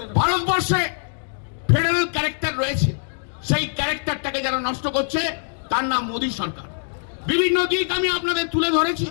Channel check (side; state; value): right; silent; digital silence